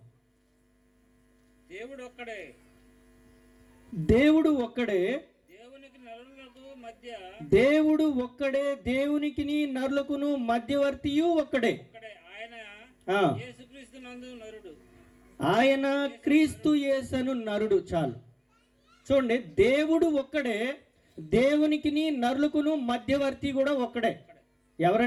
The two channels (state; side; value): identical; both; correlation 1.00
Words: దేవుడు ఒక్కడే, దేవుడు ఒక్కడే, దేవునికి నరులకు మధ్య, దేవుడు ఒక్కడే, దేవునికి నరులకును మధ్యవర్తియు ఒక్కడే. ఆయన యేసుక్రీస్తునందు నరుడు. ఆయన క్రీస్తు యేసను నరుడు. చాలు చూడండి, దేవుడు ఒక్కడే, దేవునికి నరులకును మధ్యవర్తి కూడా ఒక్కడే.